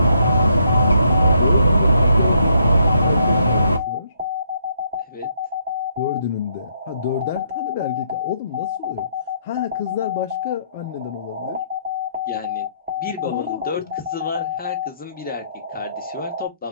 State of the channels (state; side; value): inverted; both; correlation -0.71